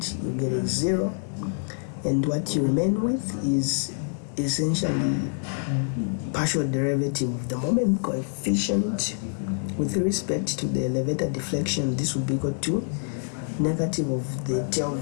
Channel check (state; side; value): silent; right; digital silence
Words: you get a 0, and what you remain with is essentially partial derivative of the moment coefficient with respect to the elevator deflection. This will be equal to negative of the tail